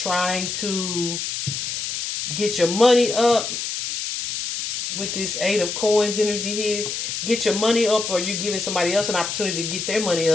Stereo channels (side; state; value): left; noise; hiss, 4 dB below the sound